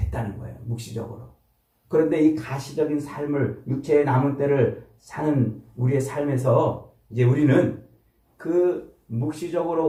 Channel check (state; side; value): identical; both; correlation 1.00